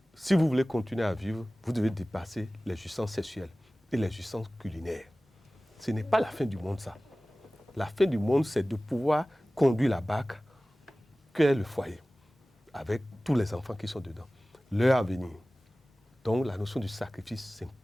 si vous voulez continuer à vivre, vous devez dépasser les jouissances sexuelles et les jouissances culinaires. Ce n'est pas la fin du monde, ça. La fin du monde, c'est de pouvoir conduire la barque qu'est le foyer, avec tous les enfants qui sont dedans. Leur avenir. Donc, la notion du sacrifice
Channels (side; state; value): both; normal; correlation 0.97